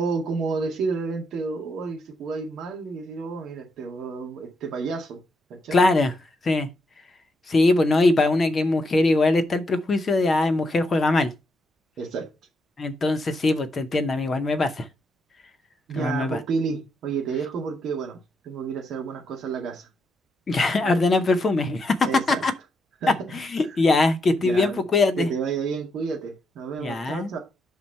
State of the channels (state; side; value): normal; both; correlation 0.80